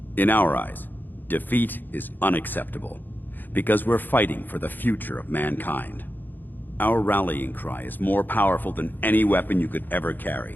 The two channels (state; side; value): late; right; 0.089 ms